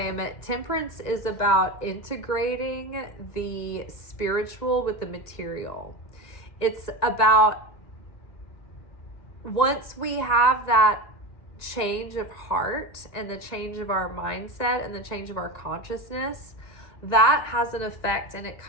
temperance is about integrating the spiritual with the material. It's about, once we have that change of heart and the change of our mindset and the change of our consciousness, that has an effect and it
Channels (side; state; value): right; late; 1.9 ms